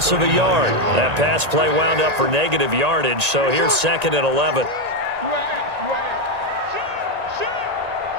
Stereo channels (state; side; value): late; left; 1.9 ms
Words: of a yard. That pass play wound up for negative yardage, so here's 2nd and 11.